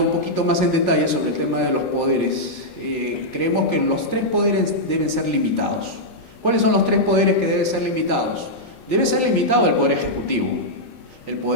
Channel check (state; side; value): late; right; 23 ms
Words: un poquito más en detalle sobre el tema de los poderes, creemos que los tres poderes deben ser limitados. ¿Cuáles son los tres poderes que deben ser limitados? Debe ser limitado el Poder Ejecutivo. El